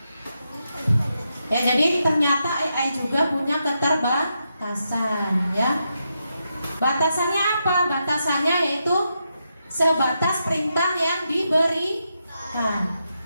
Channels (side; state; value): both; inverted; correlation -0.84